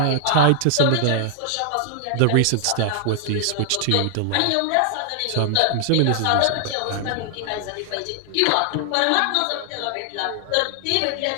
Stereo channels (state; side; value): different; both; correlation 0.00